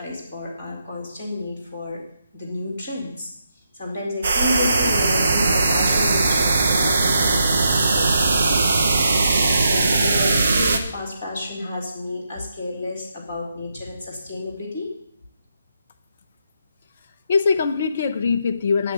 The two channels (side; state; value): both; inverted; correlation -0.81